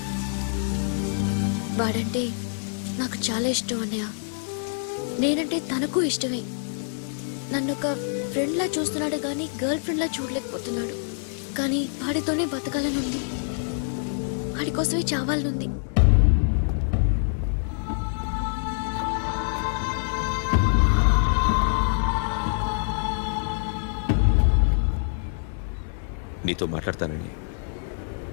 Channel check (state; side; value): silent; right; 61 dB below the other